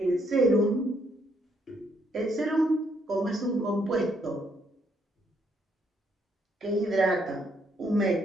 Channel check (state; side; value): normal; both; correlation 0.72